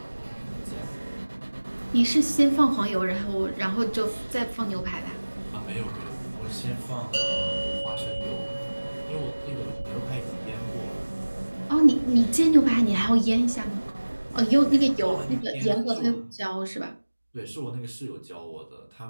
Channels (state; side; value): inverted; both; correlation -1.00